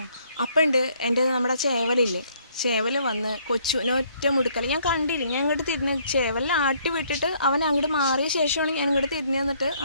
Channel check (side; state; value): both; inverted; correlation -0.65